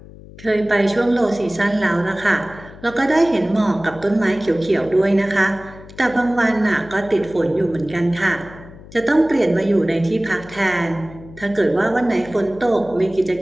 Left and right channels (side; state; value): left; noise; hum, 19 dB below the sound